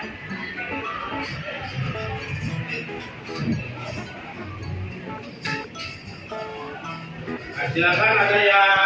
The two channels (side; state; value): both; identical; correlation 1.00